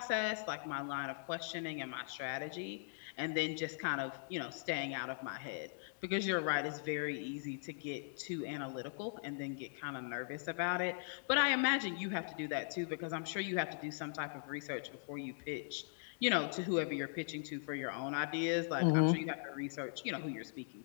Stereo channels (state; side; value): silent; right; digital silence